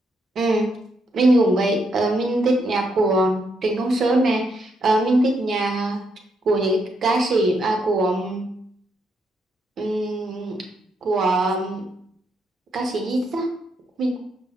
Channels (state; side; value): normal; both; correlation 0.77